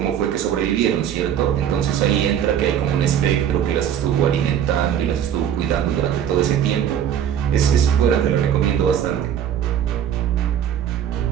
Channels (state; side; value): quieter; left; 9.5 dB